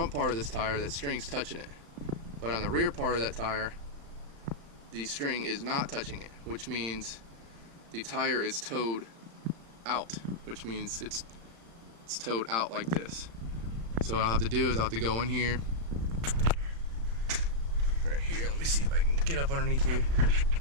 part of this tire, that string's touching it, but on the rear part of that tire, the string is not touching it, which means the tire is towed out, which means it's towed out like this. So what I'll have to do is I'll have to go in here, right here, let me see if I can get up underneath here,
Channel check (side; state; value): left; late; 35 ms